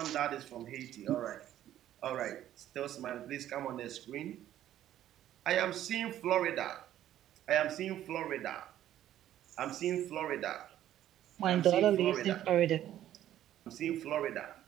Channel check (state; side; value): quieter; left; 12.2 dB